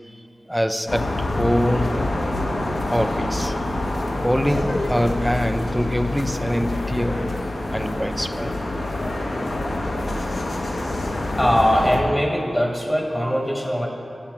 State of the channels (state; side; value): normal; both; correlation 0.96